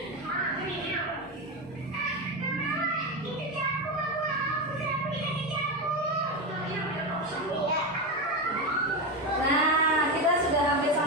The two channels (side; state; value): both; normal; correlation 0.14